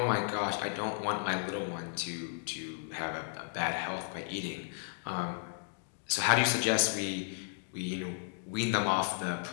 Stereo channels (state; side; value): silent; right; digital silence